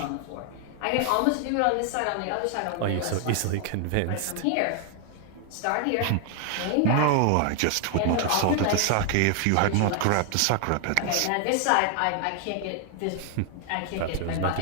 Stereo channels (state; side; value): different; both; correlation 0.00